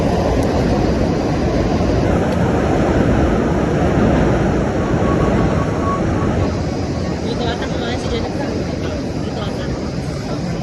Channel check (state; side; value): identical; both; correlation 1.00